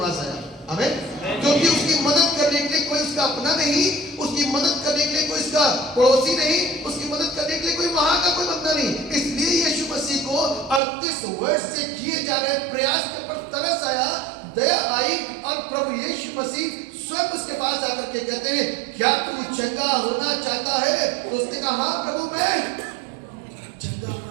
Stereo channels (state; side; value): drops out; left; at 10.8 s